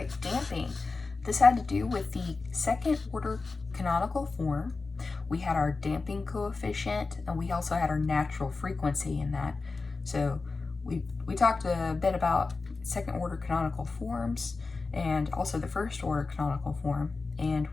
damping. This had to do with the second order canonical form. We had our damping coefficient, and we also had our natural frequency in that. So we talked a bit about second order canonical forms and also the first order canonical form, and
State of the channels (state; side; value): quieter; right; 4.0 dB